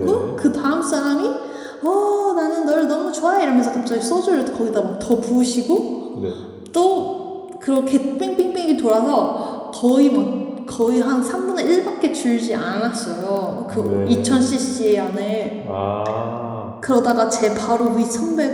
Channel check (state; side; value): identical; both; correlation 1.00